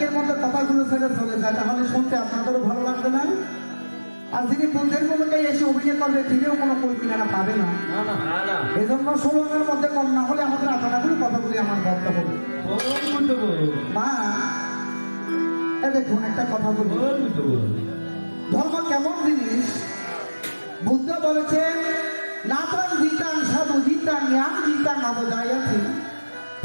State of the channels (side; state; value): both; inverted; correlation -1.00